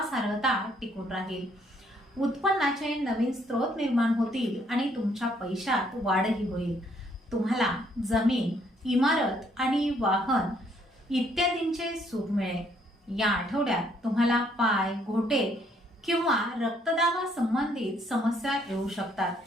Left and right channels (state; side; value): normal; both; correlation 0.68